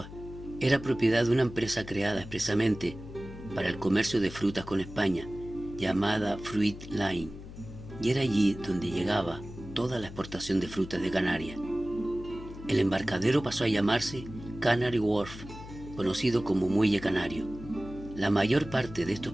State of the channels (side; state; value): left; noise; hum, 14 dB below the sound